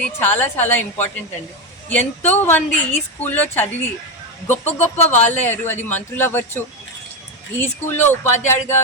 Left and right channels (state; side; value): normal; both; correlation 0.11